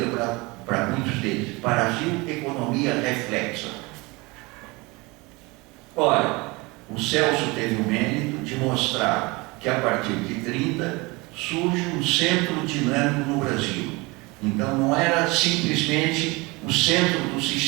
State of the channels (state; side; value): quieter; left; 24.7 dB